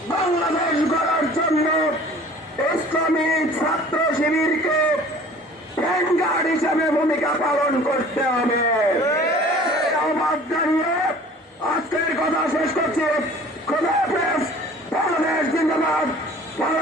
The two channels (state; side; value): normal; both; correlation 0.47